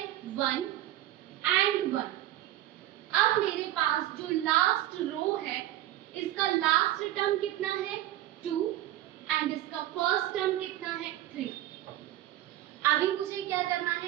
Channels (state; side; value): quieter; left; 13.9 dB